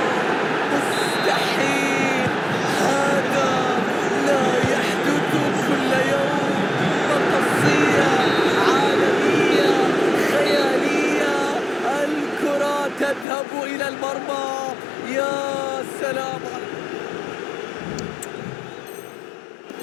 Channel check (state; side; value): drops out; right; at 13.2 s